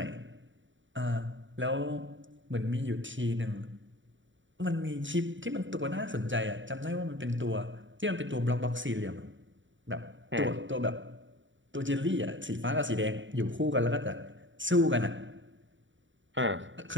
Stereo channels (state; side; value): late; left; 0.55 ms